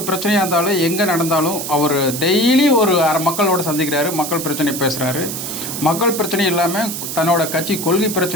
பிரச்சனையாக இருந்தாலும் எங்கே நடந்தாலும் அவர் டெய்லி ஒரு மக்களோட சந்திக்கிறாரு, மக்கள் பிரச்சனை பேசுகிறாரு. மக்கள் பிரச்சனை இல்லாமல் தன்னோட கட்சி கொள்கை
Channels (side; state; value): right; noise; hiss, 6 dB below the sound